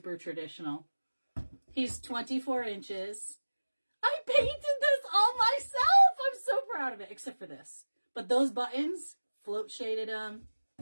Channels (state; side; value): inverted; both; correlation -1.00